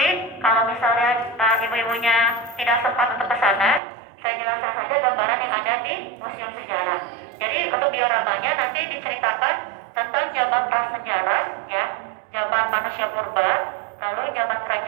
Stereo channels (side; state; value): left; drops out; at 3.8 s